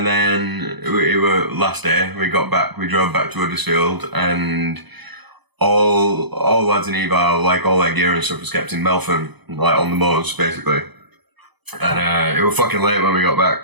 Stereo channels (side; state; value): left; late; 0.99 ms